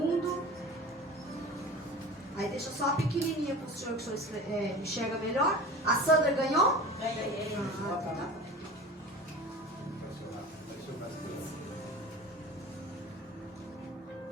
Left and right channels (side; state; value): both; normal; correlation 0.36